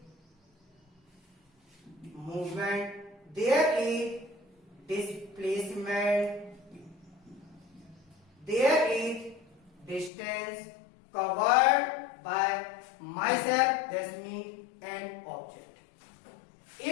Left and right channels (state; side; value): drops out; right; at 10.1 s